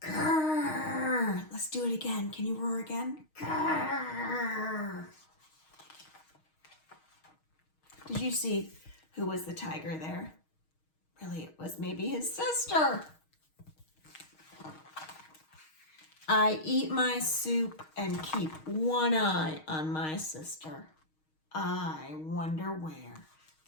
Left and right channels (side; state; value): right; late; 6.4 ms